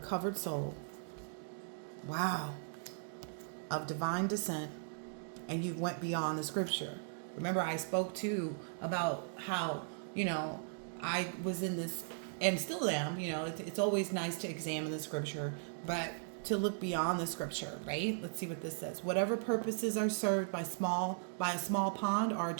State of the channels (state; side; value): silent; left; digital silence